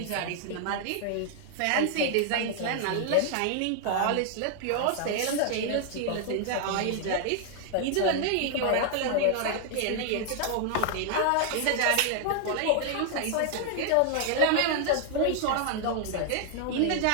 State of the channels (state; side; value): different; both; correlation 0.00